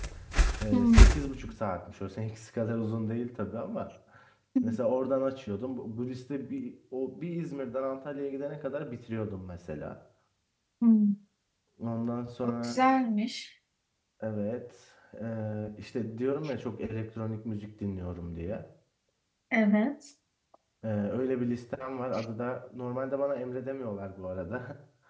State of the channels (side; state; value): both; identical; correlation 1.00